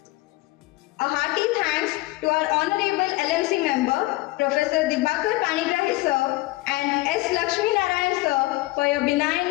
A hearty thanks to our Honorable LMC member, Professor Panigrahi sir and S. Lakshmi Narayan sir for your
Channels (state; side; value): quieter; right; 20.2 dB